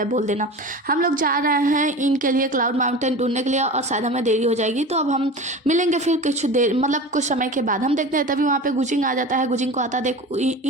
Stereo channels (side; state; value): both; normal; correlation 0.33